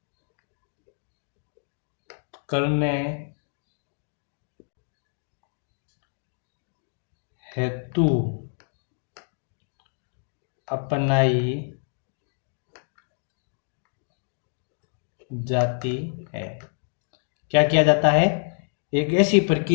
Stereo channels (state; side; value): silent; right; digital silence